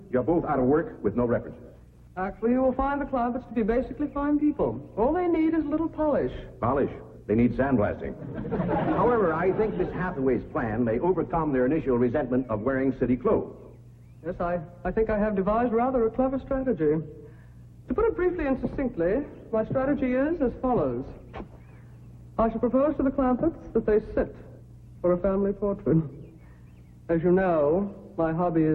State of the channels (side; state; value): both; identical; correlation 1.00